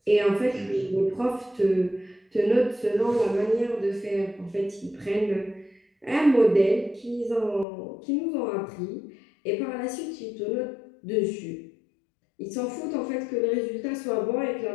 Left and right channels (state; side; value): drops out; right; at 7.7 s